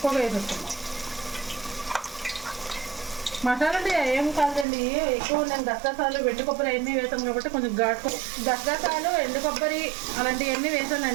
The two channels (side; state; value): left; drops out; at 4.7 s